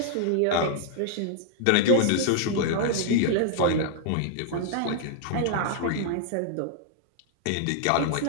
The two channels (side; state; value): both; different; correlation -0.01